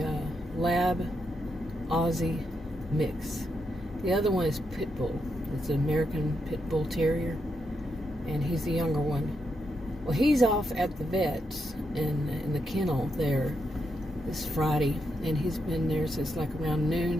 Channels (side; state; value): both; normal; correlation 0.82